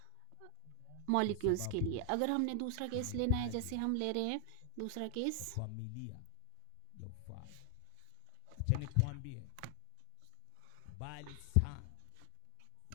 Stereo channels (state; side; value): different; both; correlation 0.00